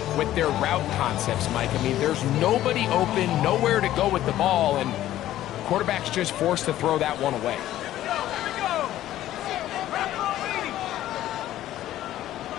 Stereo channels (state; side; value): quieter; right; 13.5 dB